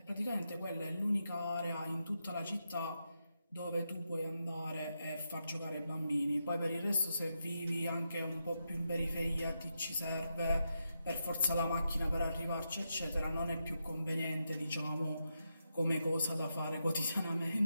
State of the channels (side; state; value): both; inverted; correlation -0.85